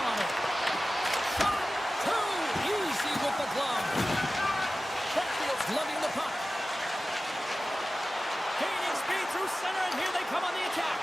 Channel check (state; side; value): normal; both; correlation 0.95